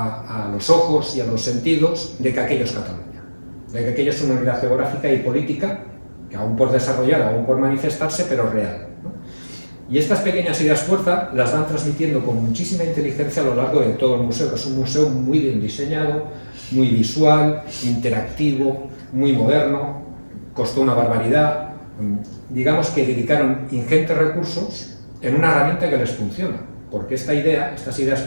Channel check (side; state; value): both; inverted; correlation -1.00